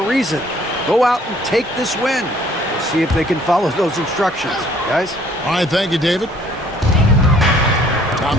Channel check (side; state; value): both; normal; correlation 0.59